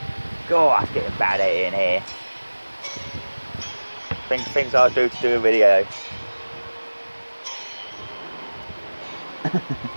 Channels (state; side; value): inverted; both; correlation -1.00